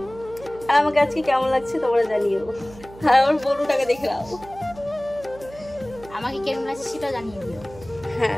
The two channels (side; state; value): right; noise; hum, 19 dB below the sound